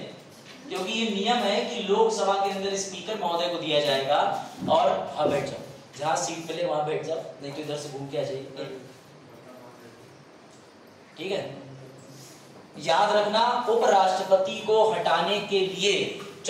क्योंकि ये नियम है कि लोकसभा के अंदर स्पीकर महोदय को दिया जाएगा। और हाँ बैठ जाओ, जहां सीट मिले वहां बैठ जाओ, नहीं तो इधर से घूम के आ जाइए। ठीक है, याद रखना, उपराष्ट्रपति को हटाने के लिए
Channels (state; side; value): identical; both; correlation 1.00